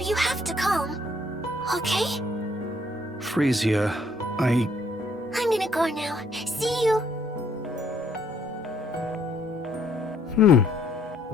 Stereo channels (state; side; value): normal; both; correlation 0.66